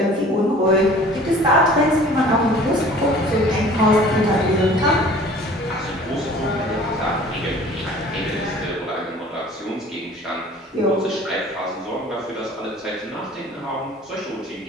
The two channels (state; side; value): normal; both; correlation 0.48